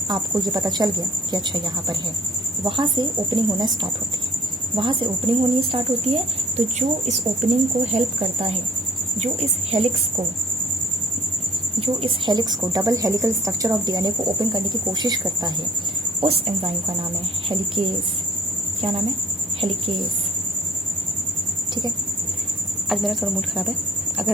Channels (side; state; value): both; normal; correlation 0.55